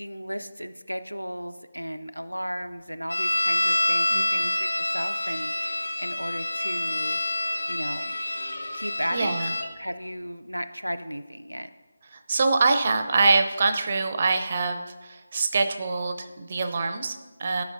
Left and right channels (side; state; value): both; inverted; correlation -0.92